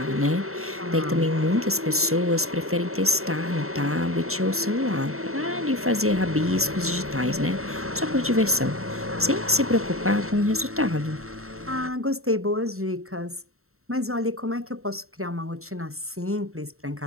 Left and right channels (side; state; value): left; late; 0.63 ms